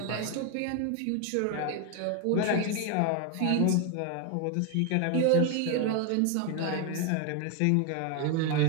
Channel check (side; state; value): both; different; correlation 0.01